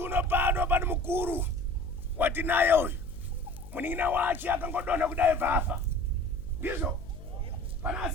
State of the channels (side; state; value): left; noise; hum, 15 dB below the sound